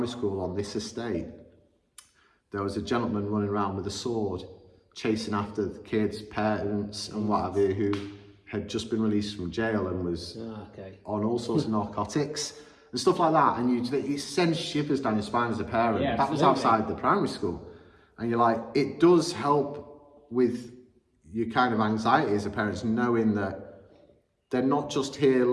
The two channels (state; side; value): identical; both; correlation 1.00